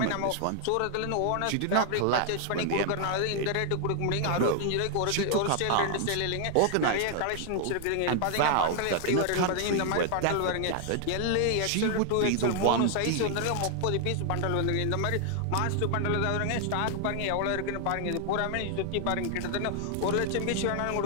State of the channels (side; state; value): both; different; correlation 0.00